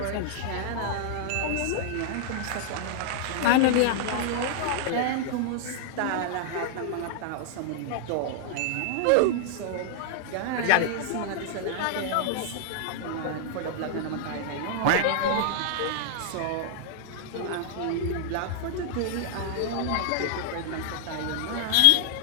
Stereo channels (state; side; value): different; both; correlation 0.00